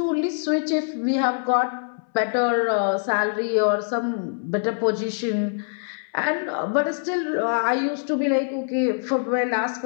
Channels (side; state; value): right; silent; 62 dB below the other